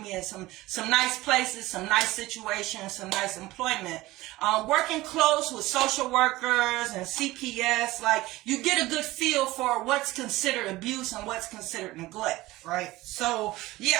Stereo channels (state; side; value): quieter; left; 18.5 dB